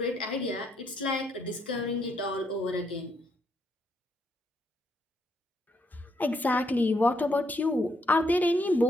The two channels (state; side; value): normal; both; correlation 0.75